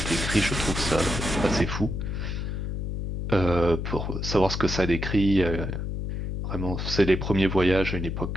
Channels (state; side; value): noise; left; hum, 3 dB below the sound